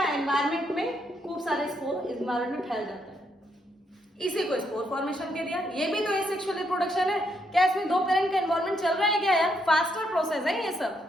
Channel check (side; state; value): both; normal; correlation 0.76